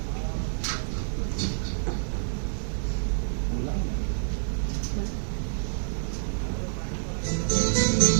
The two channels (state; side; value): silent; left; digital silence